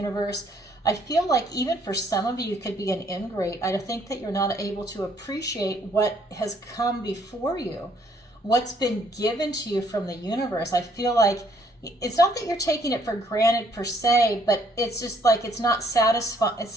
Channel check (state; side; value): normal; both; correlation 0.65